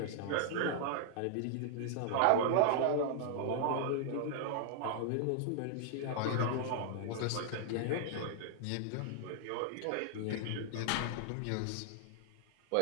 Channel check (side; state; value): both; different; correlation -0.01